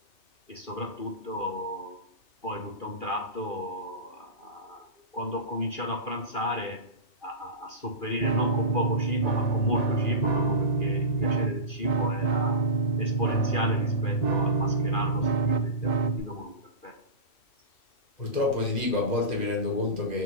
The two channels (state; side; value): late; right; 2.4 ms